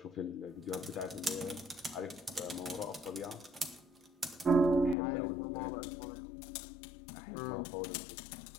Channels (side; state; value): right; drops out; at 5.0 s